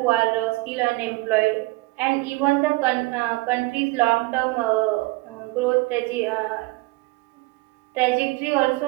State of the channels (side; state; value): left; quieter; 22.2 dB